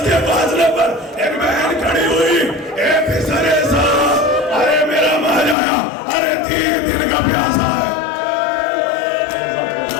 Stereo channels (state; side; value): drops out; right; at 5.6 s